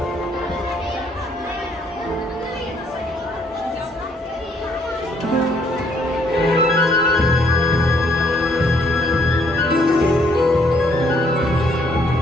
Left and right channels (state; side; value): normal; both; correlation 0.67